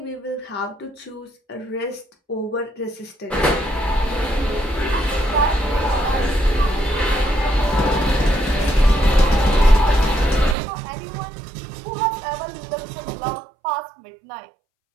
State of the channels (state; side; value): drops out; left; at 10.6 s